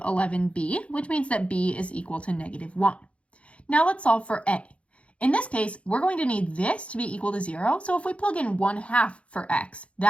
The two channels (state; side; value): late; right; 0.062 ms